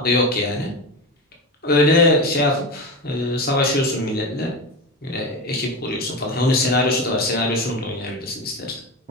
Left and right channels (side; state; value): both; normal; correlation 0.21